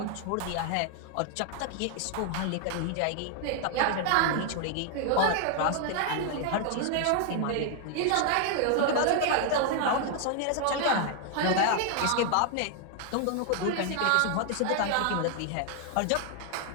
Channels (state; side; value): different; both; correlation 0.00